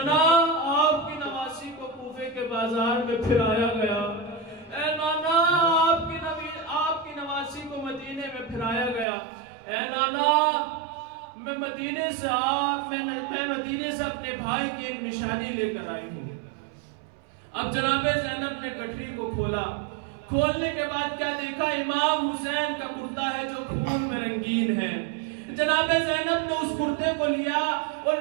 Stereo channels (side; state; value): left; drops out; at 9.1 s